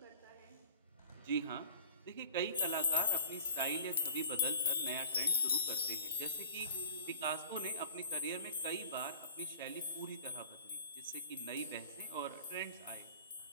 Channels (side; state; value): both; inverted; correlation -0.45